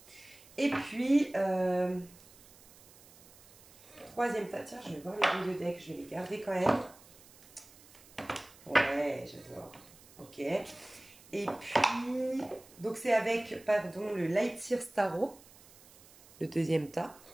Et puis, troisième tas. Tiens, je vais voir les deux decks. Je vais les garder quand même. Ouais, j'adore. Ok. Et puis, donc c'est avec, pardon, le Light Sears Tarot, le deuxième tas.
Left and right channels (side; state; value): right; noise; hiss, 24 dB below the sound